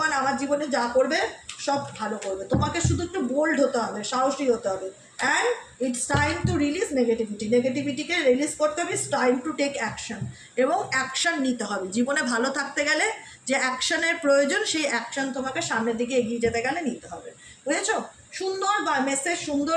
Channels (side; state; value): both; identical; correlation 1.00